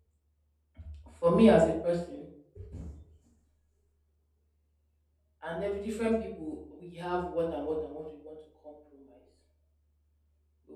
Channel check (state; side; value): identical; both; correlation 1.00